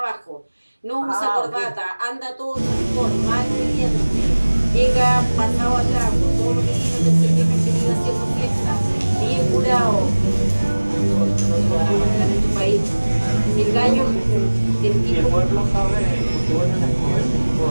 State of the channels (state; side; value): inverted; both; correlation -1.00